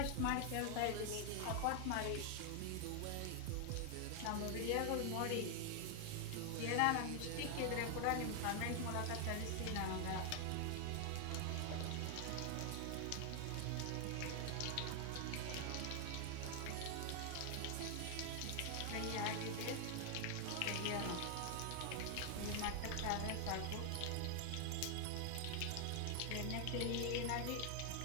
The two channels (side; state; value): both; different; correlation 0.00